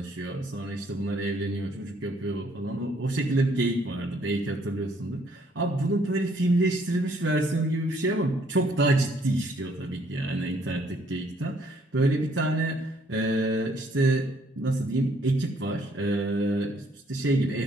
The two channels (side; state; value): both; normal; correlation 0.65